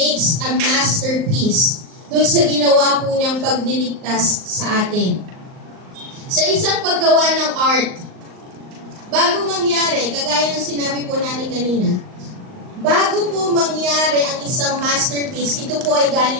a masterpiece doon sa ginawa po niyang pagliligtas sa atin. Sa isang paggawa ng art, bago mangyari, kagaya ng sinabi po natin kanina, bago po mangyari ang isang masterpiece, ito po ay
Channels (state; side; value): late; left; 38 ms